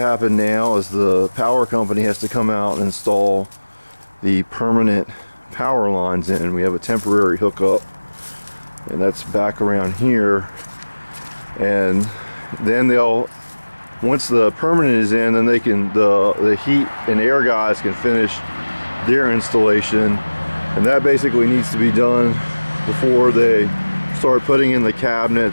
happen now is the power company has to come out and install the permanent power lines in. We have a temporary hookup, and that's back around here. And then once the permanent is in, then they can, the heat and air guys can finish their installation, and that basically needs to be done before they start putting in the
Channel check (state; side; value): inverted; both; correlation -1.00